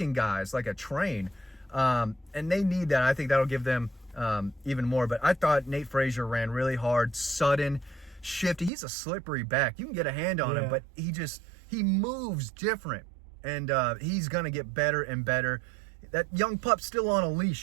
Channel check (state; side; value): drops out; left; at 8.7 s